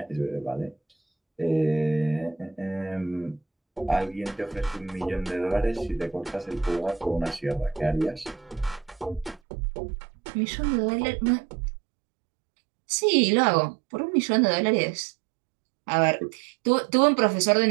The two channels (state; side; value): drops out; left; at 9.4 s